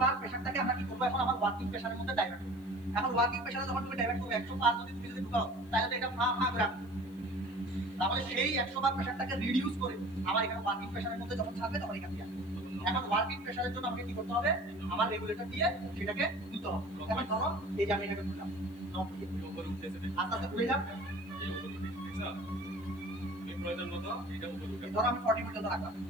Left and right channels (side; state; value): left; noise; hiss, 28 dB below the sound